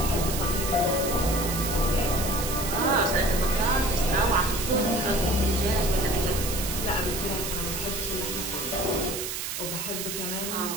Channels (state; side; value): noise; right; hiss, 4 dB below the sound